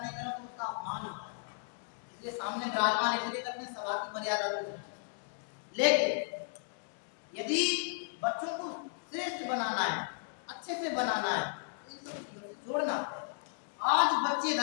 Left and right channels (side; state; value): right; silent; digital silence